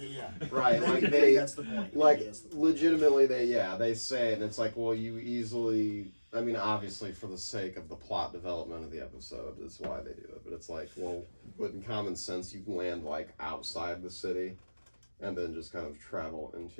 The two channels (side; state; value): both; inverted; correlation -1.00